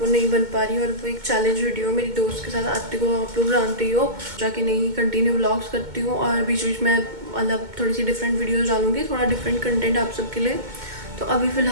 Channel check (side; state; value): left; late; 2.2 ms